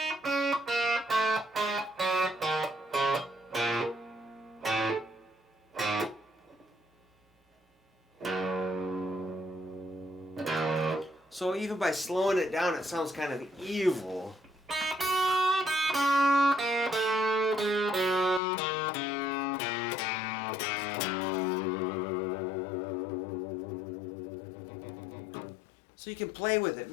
So even by slowing it down, it sounds kind of evil. So you can play with it,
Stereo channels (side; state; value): right; drops out; at 18.4 s